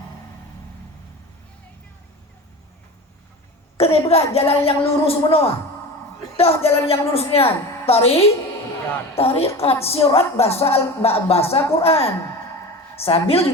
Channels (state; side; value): normal; both; correlation 0.31